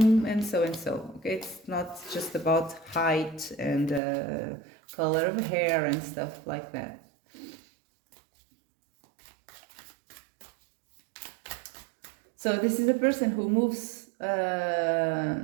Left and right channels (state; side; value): drops out; left; at 4.0 s